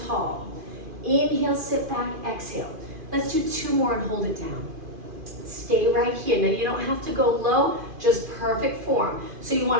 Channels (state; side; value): late; left; 2.5 ms